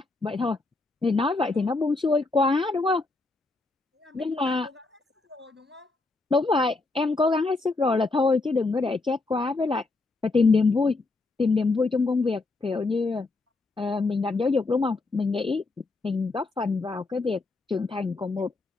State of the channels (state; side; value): quieter; right; 3.5 dB